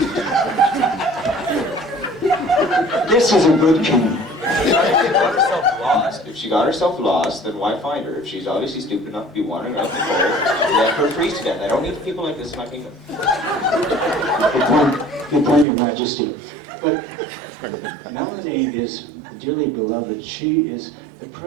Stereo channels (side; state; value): left; drops out; at 15.7 s